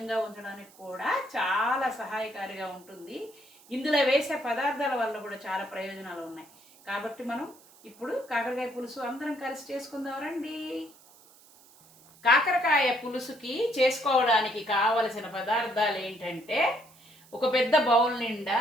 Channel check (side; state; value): right; noise; hiss, 26 dB below the sound